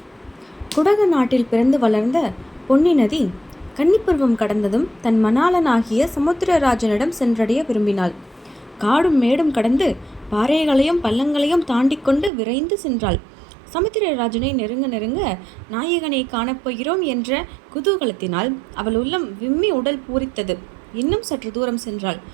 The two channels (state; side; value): drops out; left; at 12.3 s